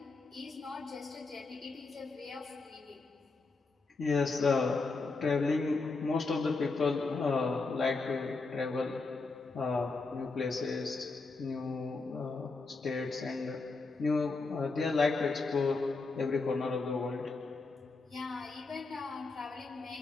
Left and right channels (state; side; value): quieter; right; 3.9 dB